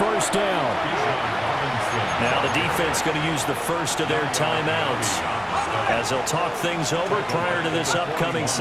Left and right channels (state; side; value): identical; both; correlation 1.00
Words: down. Now the defense going to use the first of their timeouts as they'll talk things over prior to this upcoming